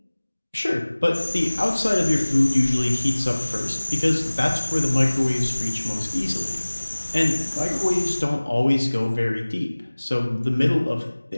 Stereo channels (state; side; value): inverted; both; correlation -1.00